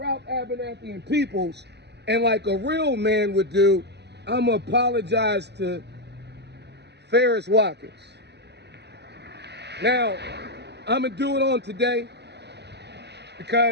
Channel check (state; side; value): late; left; 0.49 ms